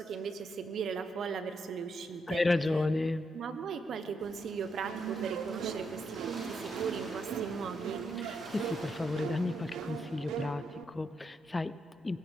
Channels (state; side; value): normal; both; correlation 0.80